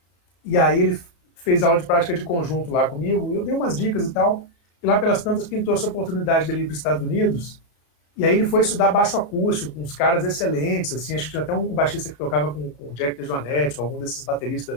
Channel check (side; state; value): right; late; 34 ms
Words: e aí ele fez aula de prática de conjunto lá comigo, eu dei umas dicas e tal, e lá pelas tantas pintou essa oportunidade dele ir para os Estados Unidos, e aí ele foi estudar baixo acústico, com uns caras excelentes, assim, acho que tinha até um baixista que tocava com o Jack DeJohnette, algum desses